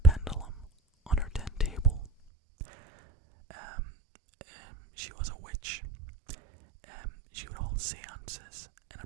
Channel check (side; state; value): left; drops out; at 2.1 s